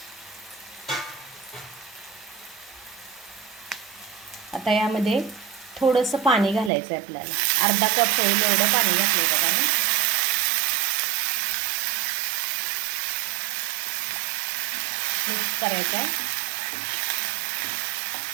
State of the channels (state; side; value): drops out; left; at 6.7 s